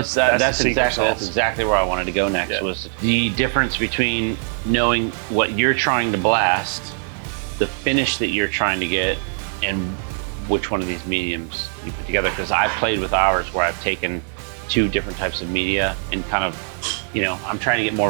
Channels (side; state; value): left; silent; 57 dB below the other